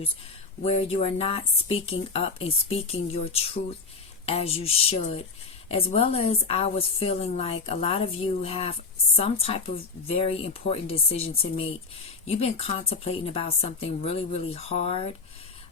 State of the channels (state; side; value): quieter; right; 4.3 dB